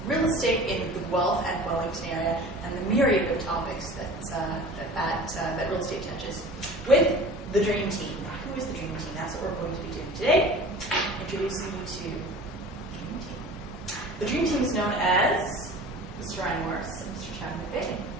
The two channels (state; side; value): normal; both; correlation 0.41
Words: real estate in the Guelph and Wellington area and the myriad of topics that real estate touches with the Dream Team. Now, who is the Dream Team? That's what we're going to be doing today. Introducing you to the Dream Team. The Dream Team is known as Mr. Ryan Morris and Mr. Chad McVeigh.